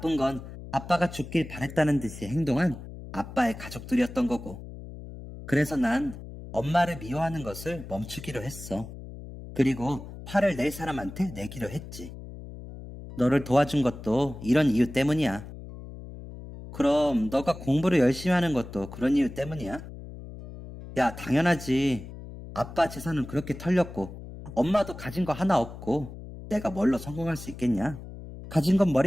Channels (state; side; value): noise; left; hum, 13 dB below the sound